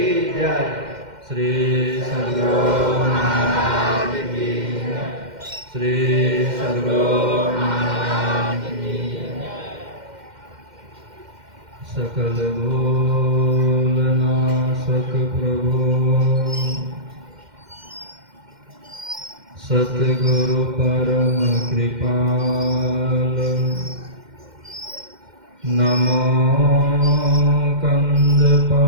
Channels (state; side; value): late; left; 2.1 ms